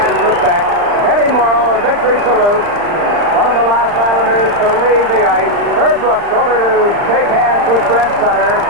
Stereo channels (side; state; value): left; late; 39 ms